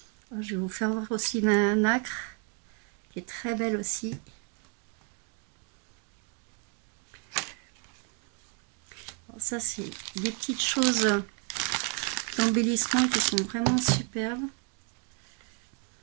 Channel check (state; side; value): quieter; left; 36.8 dB